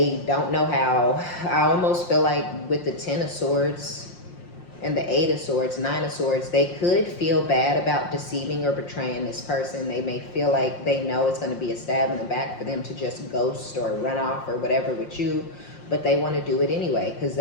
don't know how. I almost feel like with the Ten of Swords and the Eight of Swords, Nine of Swords, they could feel bad about deceiving or betraying this person. They may feel like they know it's going to be a stab in the back for them to just ghost or run off or whatever with you, but they want to do it anyway because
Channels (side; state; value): right; late; 5.7 ms